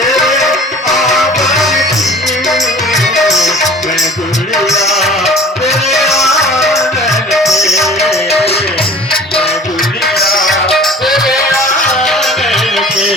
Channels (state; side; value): normal; both; correlation 0.45